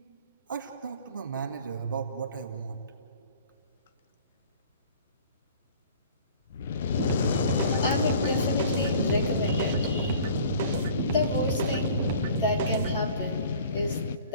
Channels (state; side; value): inverted; both; correlation -0.48